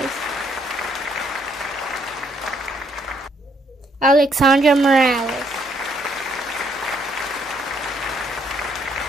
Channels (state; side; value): normal; both; correlation 0.70